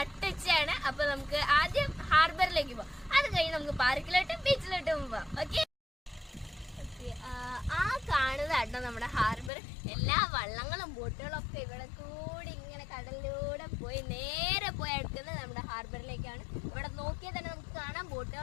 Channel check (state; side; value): drops out; right; at 9.5 s